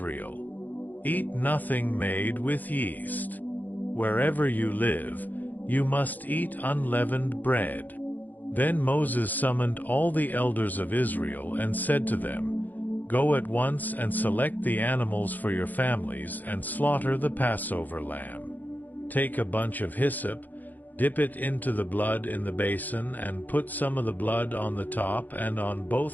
Eat nothing made with yeast. Wherever you live, you must eat unleavened bread. Then Moses summoned all the elders of Israel and said to them, Go at once and select the animals for your families and slaughter the Passover lamb. Take a bunch of hyssop, dip it into the blood in the basin, and put some of the blood on the top and on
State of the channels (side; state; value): right; late; 0.084 ms